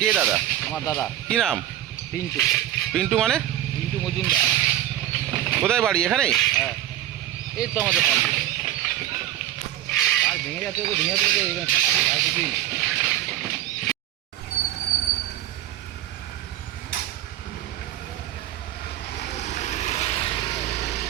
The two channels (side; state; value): left; quieter; 13.0 dB